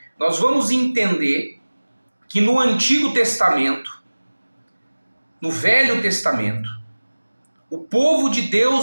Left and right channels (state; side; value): inverted; both; correlation -1.00